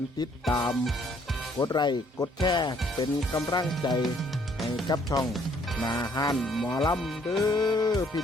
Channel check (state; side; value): normal; both; correlation 0.64